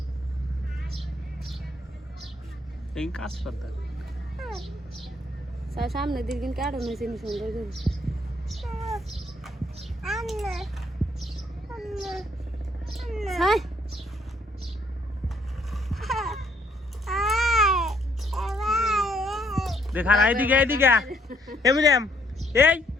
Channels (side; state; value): both; normal; correlation 0.69